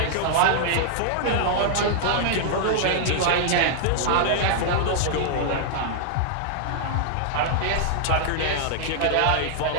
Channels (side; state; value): both; different; correlation -0.01